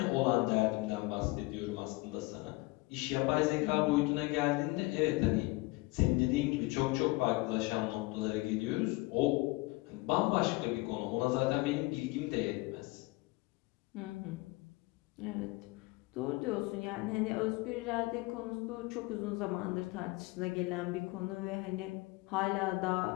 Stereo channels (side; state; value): right; quieter; 23.1 dB